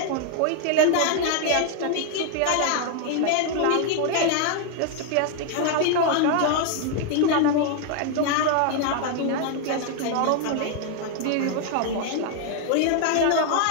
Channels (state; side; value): different; both; correlation 0.00